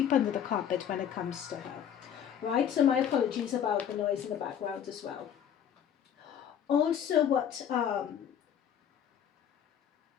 under the carpet when it comes to her. Right? So my apologies about the noise in the background as well. Also,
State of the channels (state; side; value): quieter; right; 9.0 dB